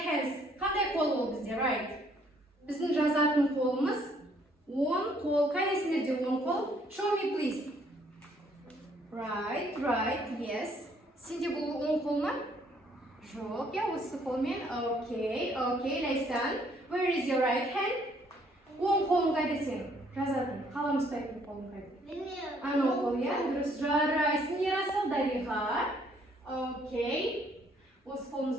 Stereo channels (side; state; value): both; normal; correlation 0.65